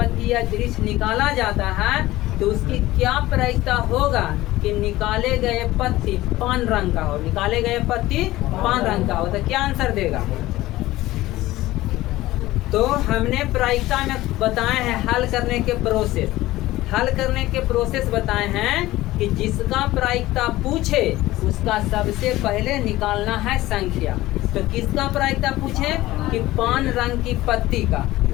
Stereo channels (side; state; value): right; quieter; 17.1 dB